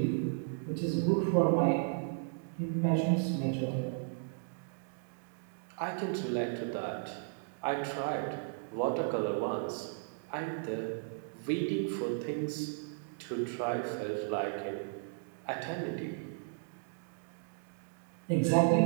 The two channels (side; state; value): left; silent; digital silence